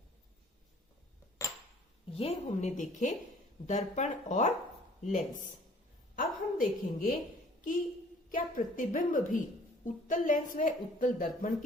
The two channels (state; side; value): normal; both; correlation 0.54